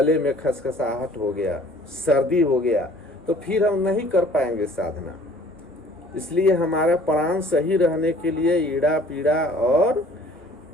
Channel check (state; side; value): normal; both; correlation 0.53